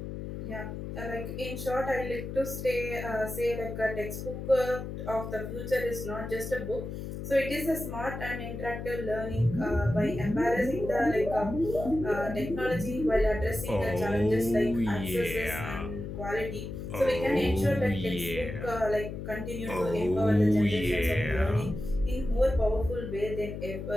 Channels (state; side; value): noise; left; hum, 7 dB below the sound